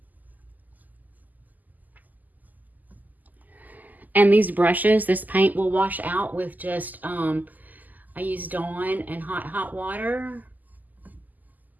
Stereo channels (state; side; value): late; left; 0.082 ms